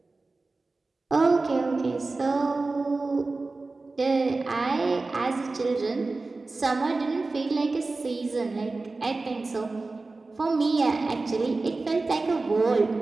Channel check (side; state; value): left; quieter; 3.5 dB